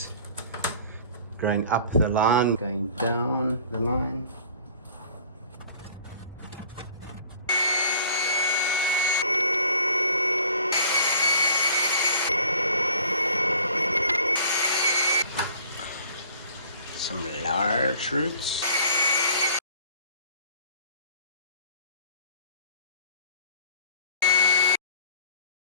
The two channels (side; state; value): both; inverted; correlation -0.50